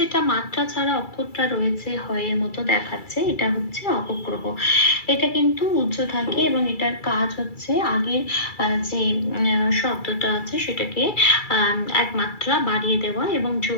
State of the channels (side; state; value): right; late; 2.3 ms